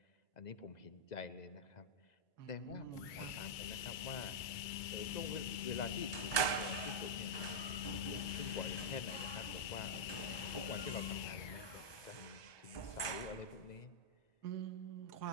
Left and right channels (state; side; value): late; right; 1.2 ms